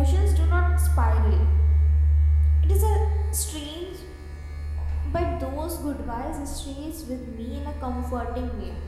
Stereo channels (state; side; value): identical; both; correlation 1.00